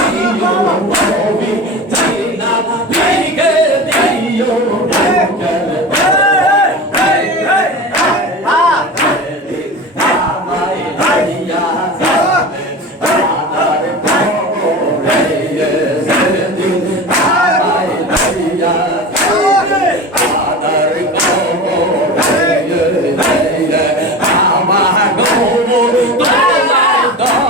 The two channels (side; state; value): both; normal; correlation 0.30